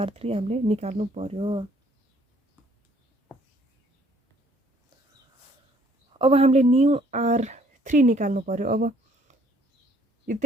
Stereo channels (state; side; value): normal; both; correlation 0.62